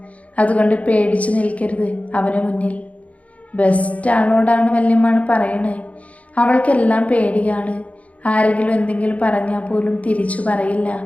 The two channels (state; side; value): late; right; 0.067 ms